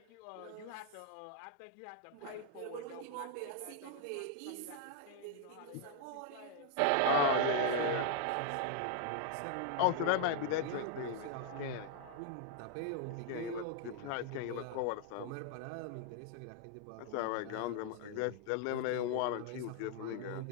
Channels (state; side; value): different; both; correlation 0.00